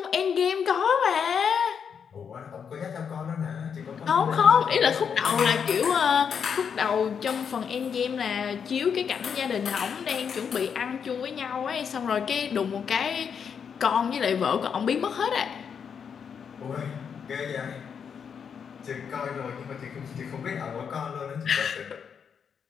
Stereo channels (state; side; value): quieter; right; 7.0 dB